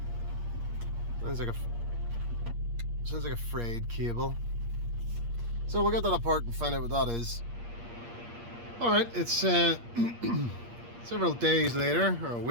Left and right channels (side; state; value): left; late; 8.5 ms